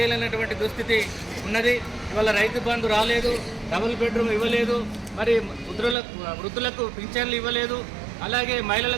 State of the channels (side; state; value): left; drops out; at 6.0 s